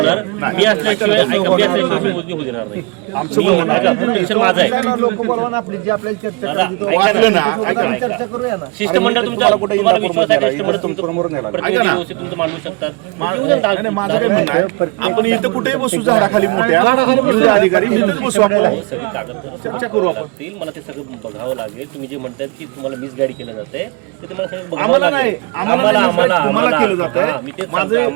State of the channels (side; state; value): left; quieter; 27.8 dB